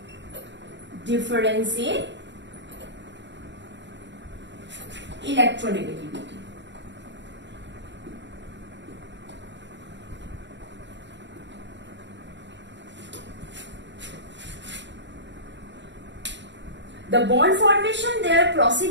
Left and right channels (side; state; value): left; late; 0.52 ms